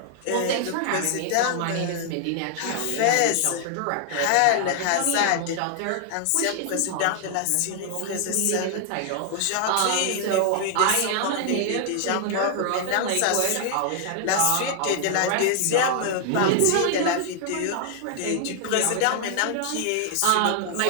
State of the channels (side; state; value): both; different; correlation 0.00